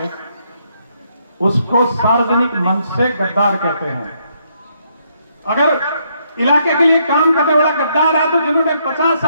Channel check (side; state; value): both; inverted; correlation -0.74